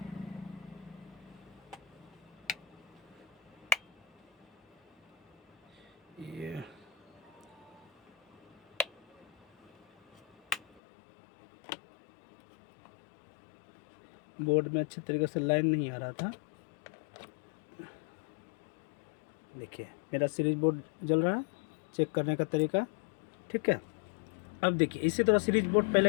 ये बोर्ड में अच्छे तरीके से लाइन नहीं आ रहा था। देखिए मेरा सीरीज बोर्ड जल रहा है, चेक करने का तरीका ठीक है। अब देखिए इसी तरह सीरीज बोर्ड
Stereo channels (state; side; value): drops out; right; at 10.8 s